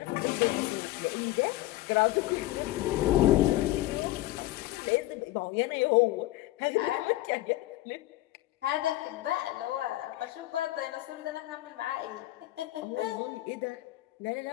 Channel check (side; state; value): right; quieter; 16.9 dB